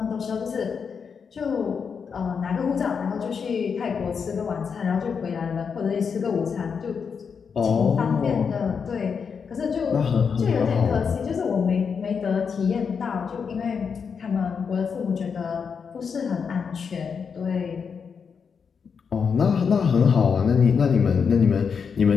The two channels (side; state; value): right; quieter; 6.2 dB